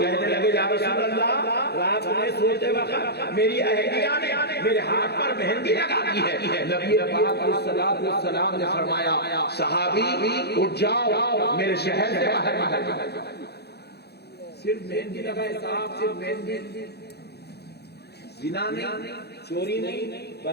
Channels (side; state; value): right; late; 0.48 ms